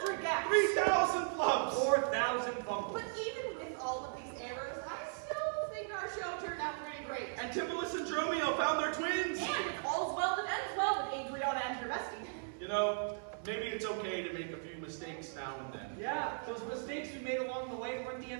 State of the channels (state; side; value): silent; left; 53 dB below the other